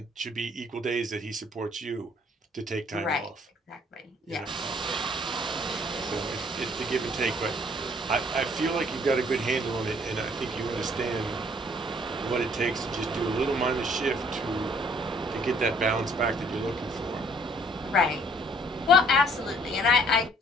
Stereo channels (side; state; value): both; normal; correlation 0.60